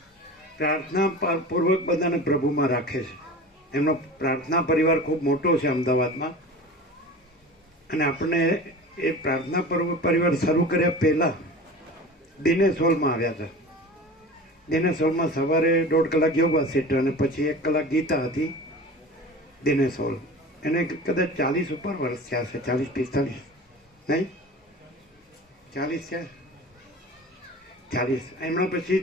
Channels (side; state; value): both; normal; correlation 0.35